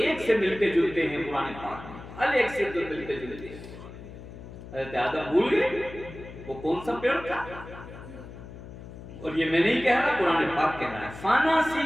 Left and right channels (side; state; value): left; noise; hum, 14 dB below the sound